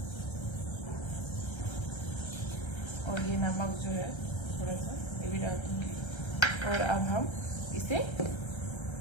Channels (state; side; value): late; right; 1.3 ms